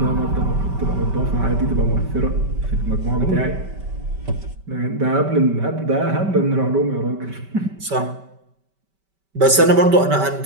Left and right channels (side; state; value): left; late; 5.2 ms